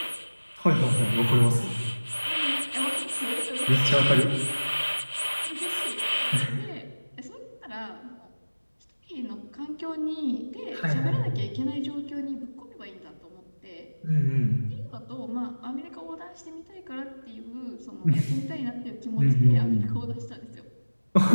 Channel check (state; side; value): inverted; both; correlation -1.00